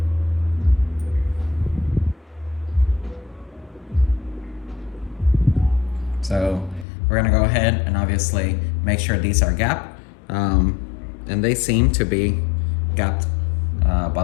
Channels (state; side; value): drops out; right; at 6.9 s